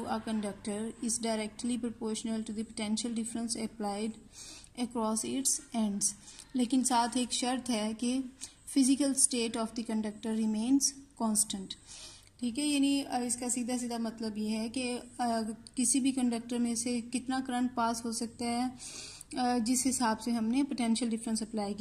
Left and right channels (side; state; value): both; identical; correlation 1.00